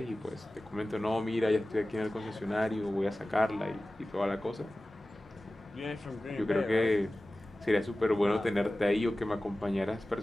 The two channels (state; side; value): normal; both; correlation 0.96